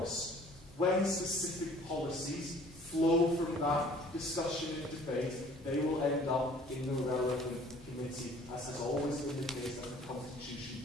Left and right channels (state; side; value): normal; both; correlation 0.53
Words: when specific policies flow from that discussion and debate, they will end up in the relevant committee, as has always been the case and the Constitution